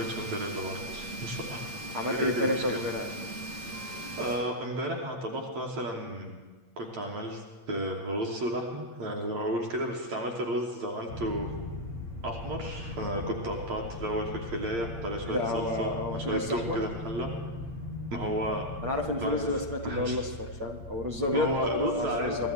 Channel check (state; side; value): late; left; 8.7 ms